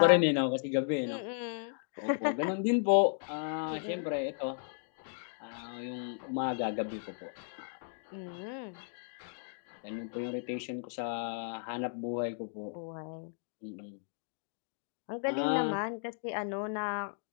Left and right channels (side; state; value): right; silent; digital silence